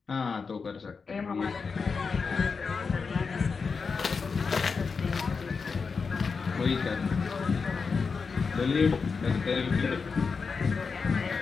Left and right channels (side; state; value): right; quieter; 5.1 dB